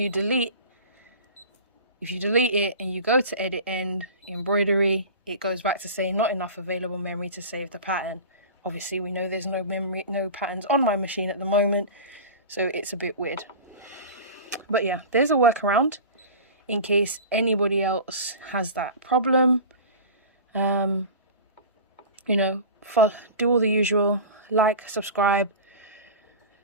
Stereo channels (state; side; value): inverted; both; correlation -0.34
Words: delete it and you go to edit end, embroidery, it goes back to saying not enough available memory to save the pattern. Obviously, we know there's no patterns on my machine at the moment, so it's a bit weird. But yeah, there's a workaround in case anybody else has that problem. You know, do all the usual, like, subscribe,